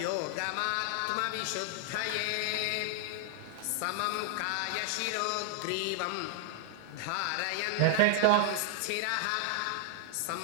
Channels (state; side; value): different; both; correlation -0.01